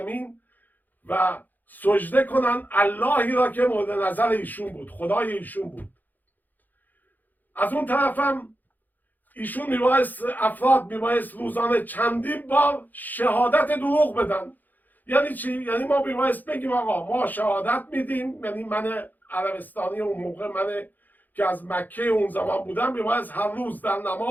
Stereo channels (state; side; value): late; right; 0.085 ms